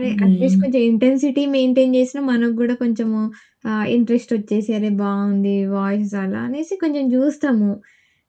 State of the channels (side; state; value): both; identical; correlation 1.00